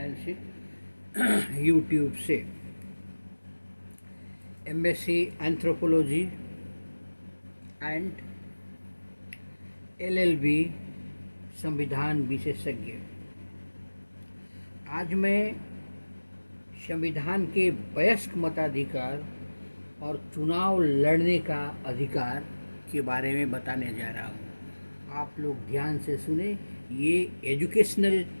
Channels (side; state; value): both; inverted; correlation -1.00